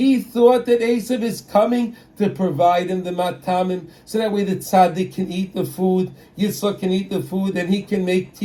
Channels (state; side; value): identical; both; correlation 1.00